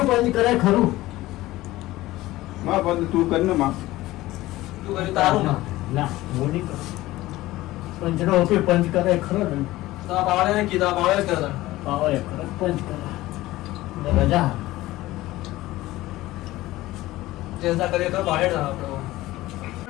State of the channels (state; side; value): quieter; right; 17.3 dB